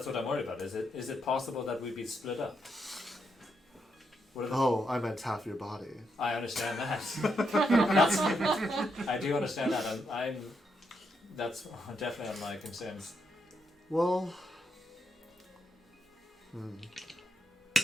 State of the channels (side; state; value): both; normal; correlation 0.81